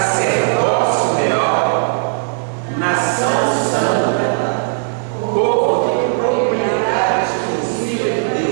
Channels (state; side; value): silent; left; digital silence